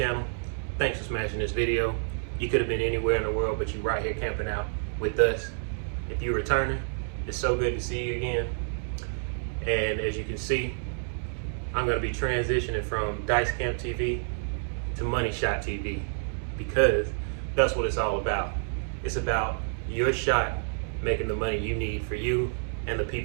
thanks for smashing this video. You could have been anywhere in the world, but you're right here camping out with us. If you're returning, it's so good to see you again. And as you can see, I'm gonna be transitioning from Dice Camp TV to Money Shot TV because that's what it's all about. It's about your shot making the money you need for you and the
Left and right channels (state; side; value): silent; left; digital silence